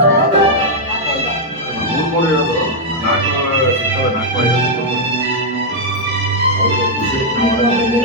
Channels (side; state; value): both; normal; correlation -0.03